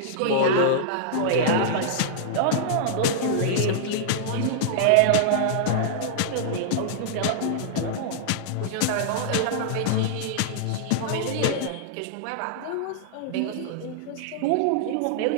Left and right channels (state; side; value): different; both; correlation -0.02